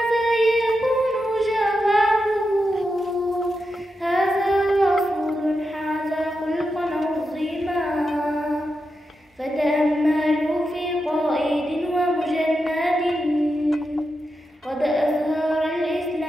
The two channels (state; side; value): normal; both; correlation 0.88